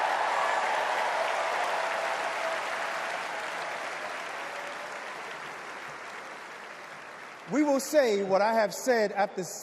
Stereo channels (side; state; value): both; identical; correlation 1.00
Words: We will say what I have said after